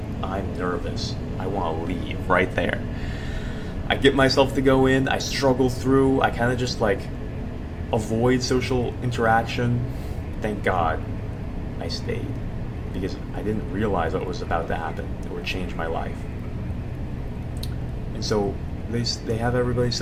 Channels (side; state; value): both; identical; correlation 1.00